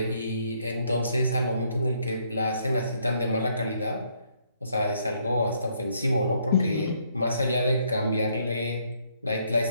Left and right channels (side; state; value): both; inverted; correlation -0.70